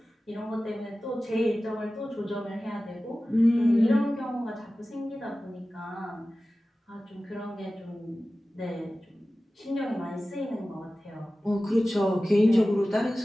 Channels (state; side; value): normal; both; correlation 0.96